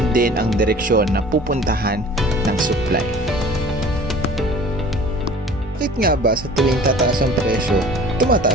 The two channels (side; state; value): both; normal; correlation 0.46